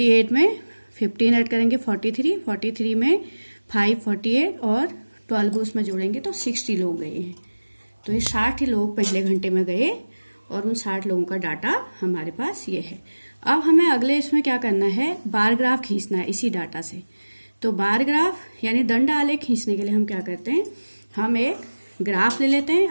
में 15 ऐड करेंगे 43, 43 में 5 48 और 12 उसमें जोड़ेंगे तो 60 लोग गए हैं। तो ये 60 लोग पहले घंटे में गए और उन 60 लोगों का डाटा हमारे पास ये है। अब हमें अगले इसमें क्या करना है, बार ग्राफ खींचना है इसी डाटा से। तो बार ग्राफ यानी दंड आलेख खींचने के लिए हम क्या करते हैं, हम एक ग्राफ ले लेते हैं।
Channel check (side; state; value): both; inverted; correlation -1.00